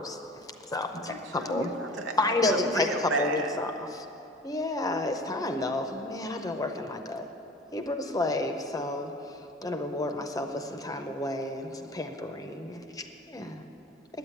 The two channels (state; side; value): normal; both; correlation 0.41